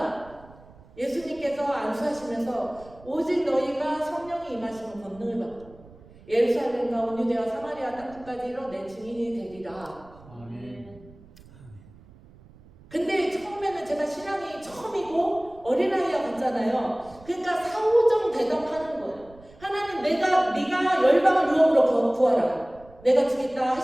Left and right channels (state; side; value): noise; right; rumble, 23 dB below the sound